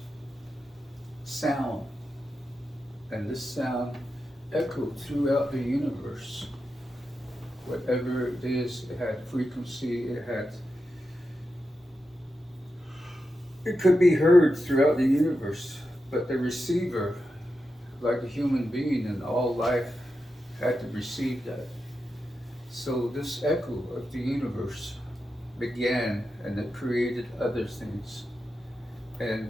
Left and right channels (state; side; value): normal; both; correlation 0.89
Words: sound. And this sound echoed throughout the universe. Whatever it is, it had frequency, it could be heard throughout the universe, but the receiver, like a human being in all life, had to receive that. So this echo of the universe began, and it created other things. And